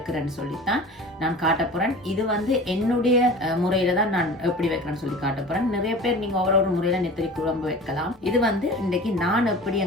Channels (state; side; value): normal; both; correlation 0.38